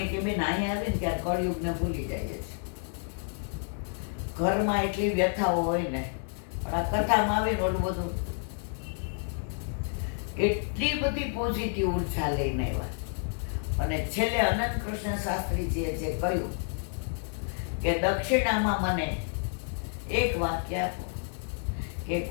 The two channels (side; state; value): right; silent; 58 dB below the other